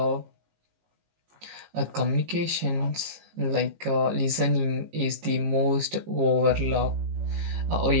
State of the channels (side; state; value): left; late; 18 ms